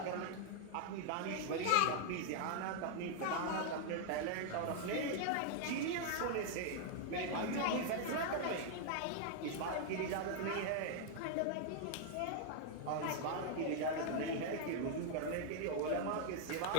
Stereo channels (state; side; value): different; both; correlation 0.00